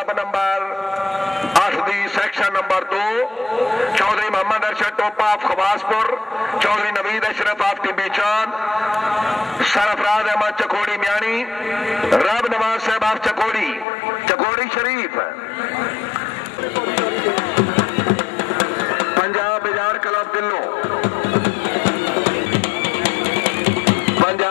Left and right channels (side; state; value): right; drops out; at 13.9 s